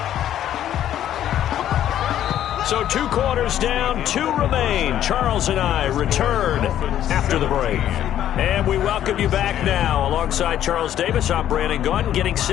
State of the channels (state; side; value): quieter; right; 11.3 dB